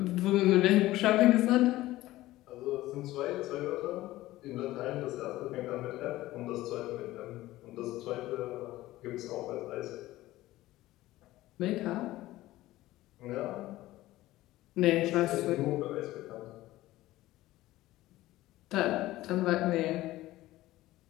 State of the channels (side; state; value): right; quieter; 16.6 dB